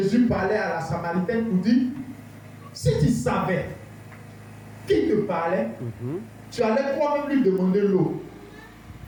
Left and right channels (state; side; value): identical; both; correlation 1.00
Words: parlait à la Samaritaine pour dire, si tu savais qui te parlait, tu allais toi-même lui demander l'eau.